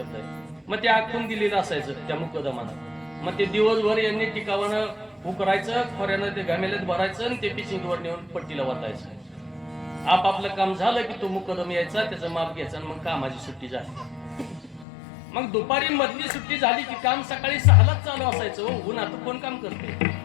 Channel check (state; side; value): drops out; right; at 14.9 s